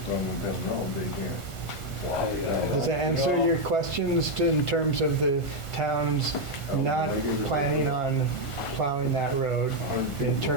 road, they can't. does that answer your questions in terms of the town's not planning on plowing that road. In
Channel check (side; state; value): right; late; 1.4 ms